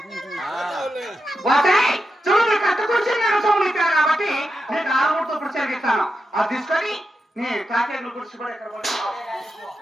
చూడు కట్టుకొచ్చి నేను సోమలిస్తాను కాబట్టి నేను 6 ఇప్పుడు చెరిగిస్తాను. అది తీసుకొని నీ కాకేళ్ళు గుడిచి కూడా ఎక్కడ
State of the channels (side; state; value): both; normal; correlation 0.88